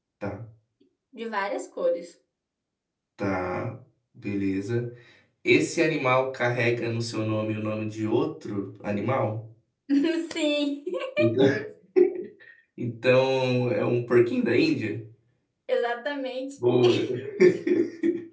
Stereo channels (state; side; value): identical; both; correlation 1.00